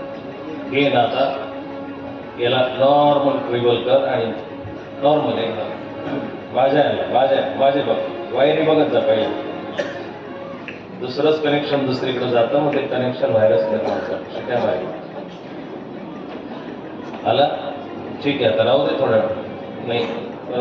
हे ना आता याला नॉर्मल ट्रिबल कर आणि नॉर्मल एकदम माझे बघ वायरी बघत जा पाहिजे. दुसरंच कनेक्शन दुसरीकडे जातं मग ते कनेक्शन व्हायरस निर्माण करतं. शिकाय माहिती आला ठीक आहे. आता राहू दे थोडा नाही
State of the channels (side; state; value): both; identical; correlation 1.00